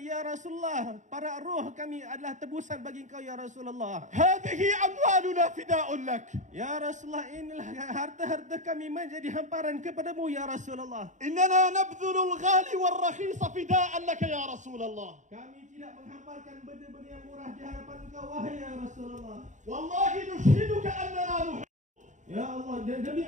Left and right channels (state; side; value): late; left; 0.35 ms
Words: ya Rasulullah, para ruh kami adalah tebusan bagi engkau ya Rasulullah. هذه أموالنا فداء لك. Ya Rasulullah, inilah harta-harta kami menjadi hamparan kepadamu ya Rasulullah. إننا نبذل الغالي والرخيص فداء لك يا رسول الله. Kami tidak menghamparkan benda-benda yang murah di hadapan engkau wahai ya Rasulullah. والله نشهدك أننا نحب. Ya Allah, demi